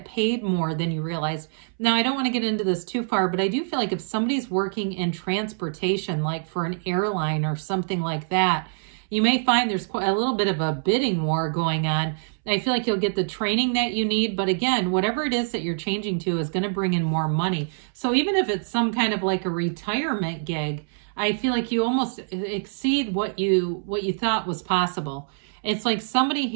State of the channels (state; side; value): silent; left; 62 dB below the other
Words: paid more than you realized. Now, I don't want to get into this too far, but I do feel like if somebody's working in transportation, like for an airline or something like that, you may find there's quite a little bit of a bidding war going on. I feel like you'll get the training that you need. But again, whatever it is that you're changing to is going to bring in more money. So even if it's some kind of like a retirement gig, I feel like you almost exceed what you thought was possible. It's like somebody